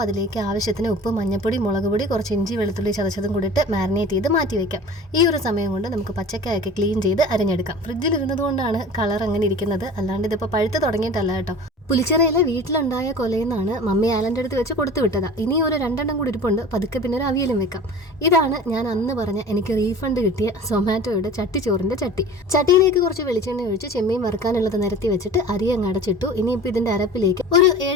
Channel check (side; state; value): both; normal; correlation 0.39